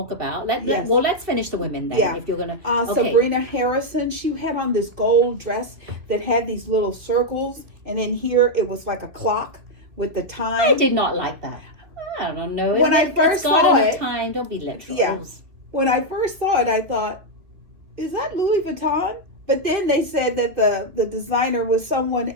about. Yes. Well, let's finish the women then. Yeah. If you're gonna, okay. Sabrina Harrison, she had on this gold dress that had these little circles, and in here it was like a clock with the time. I did not like that. I don't know. When I first saw it, time. Don't be literal. Yeah. When I first saw it, I thought, is that Louis Vuitton? But then they said that the designer was someone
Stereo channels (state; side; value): late; left; 2.7 ms